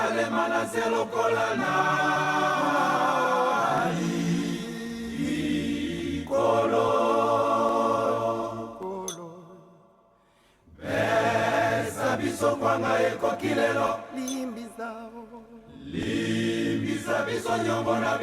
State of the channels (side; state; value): both; identical; correlation 1.00